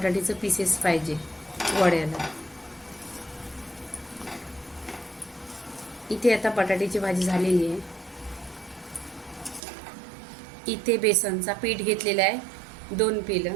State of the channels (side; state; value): left; drops out; at 9.6 s